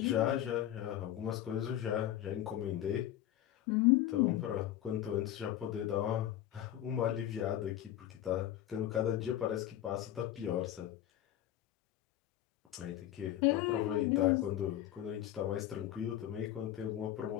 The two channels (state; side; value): quieter; right; 12.4 dB